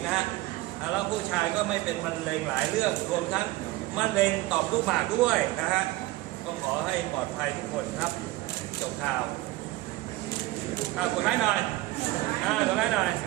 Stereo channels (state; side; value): quieter; left; 18.2 dB